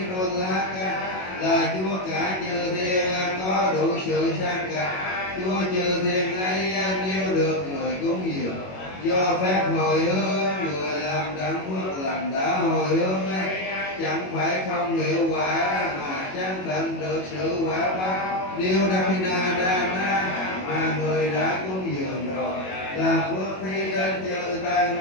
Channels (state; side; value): late; right; 21 ms